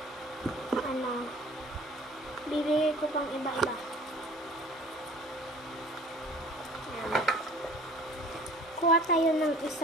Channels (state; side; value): normal; both; correlation 0.48